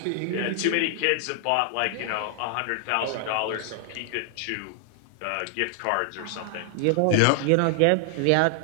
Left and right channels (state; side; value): different; both; correlation 0.00